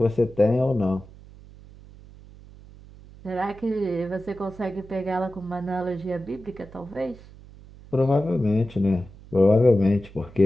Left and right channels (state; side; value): noise; right; hum, 20 dB below the sound